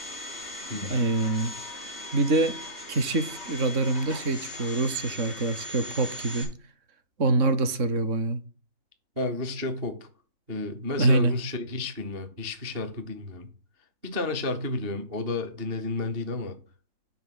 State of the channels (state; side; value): late; left; 3.6 ms